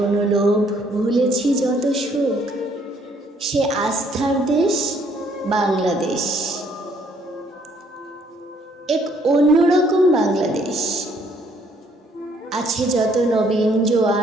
লোভ, ভুলেছি যত সুখ, সে আস্থার দেশ বাংলাদেশ। এক অন্যরকম বাংলাদেশ, আছে যত নবীন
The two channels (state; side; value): normal; both; correlation 0.65